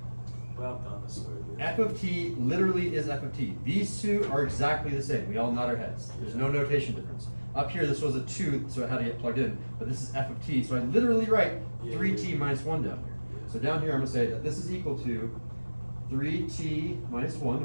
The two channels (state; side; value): inverted; both; correlation -1.00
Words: but I've done this already. F of t literally is f of t. These two are exactly the same. We all nod our heads. There's no notation difference. Up here, this was a 2, so it had to get plugged in. But this is f of t, so I literally write 3t minus 1 down here. So down here, I'm going to say that this is equal to 3t minus 1.